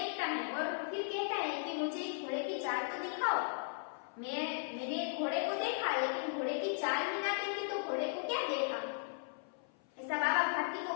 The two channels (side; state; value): right; silent; 53 dB below the other